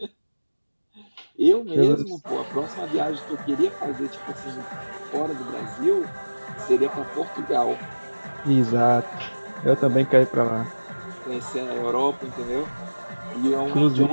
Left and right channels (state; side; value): inverted; both; correlation -1.00